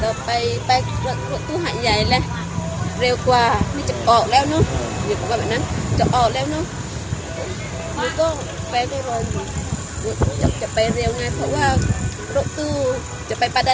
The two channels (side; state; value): both; identical; correlation 1.00